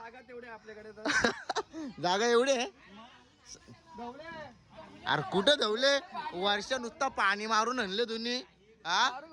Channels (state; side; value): identical; both; correlation 1.00